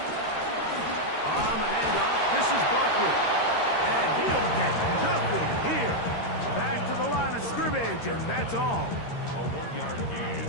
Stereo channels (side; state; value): right; late; 13 ms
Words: the handoff, this is Barkley. And he'll get nothing here. Back to the line of scrimmage, and that's all. A 1-yard gain